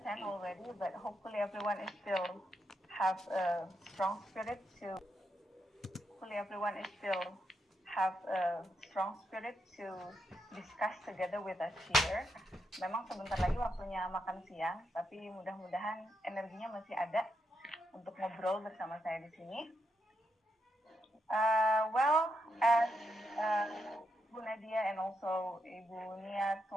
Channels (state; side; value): normal; both; correlation 0.82